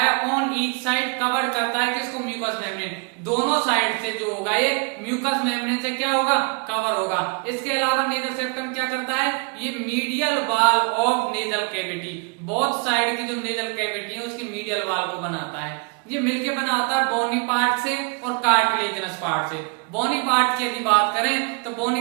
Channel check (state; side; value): quieter; left; 34.7 dB